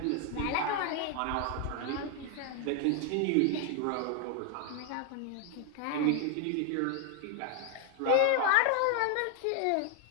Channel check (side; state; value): both; different; correlation 0.01